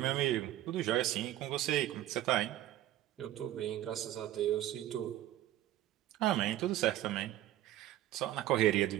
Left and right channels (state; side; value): quieter; left; 13.7 dB